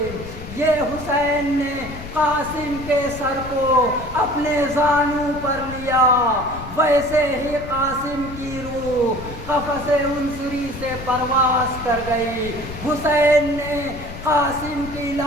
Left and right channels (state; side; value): noise; left; rumble, 12 dB below the sound